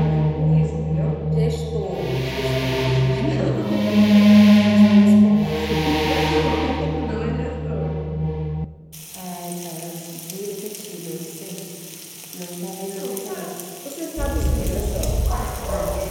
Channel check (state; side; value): identical; both; correlation 1.00